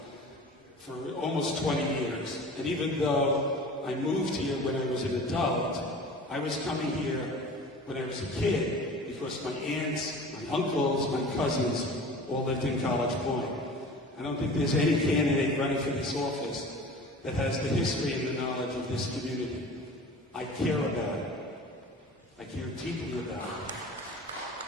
for almost 20 years. And even though I moved here when I was an adult, I was coming here when I was a kid because my aunts, my uncles, my cousins all lived in College Point. I don't think there's any candidate running for this office that has the history and the knowledge of this community. I care about it. I care deeply about it.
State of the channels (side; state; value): both; normal; correlation 0.40